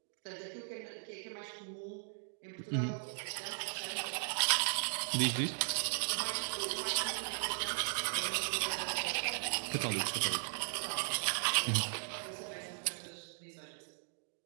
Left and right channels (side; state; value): left; silent; digital silence